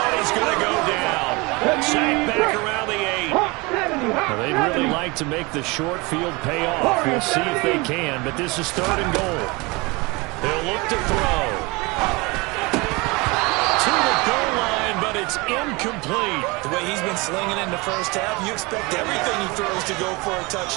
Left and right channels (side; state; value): left; quieter; 25.6 dB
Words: and he's going to go down. Sacked back around the 8. Well, they'd really like to make the short field pay off. We'll see if they can, but this is 3rd and goal. They'll look to throw. To the goal line, but it's incomplete. The way he's been slinging in the first half, you expect everything he throws to go for a